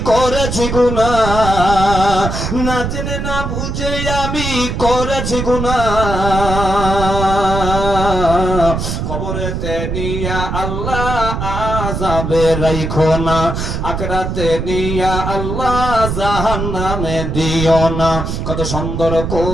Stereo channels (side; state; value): right; noise; rumble, 3 dB below the sound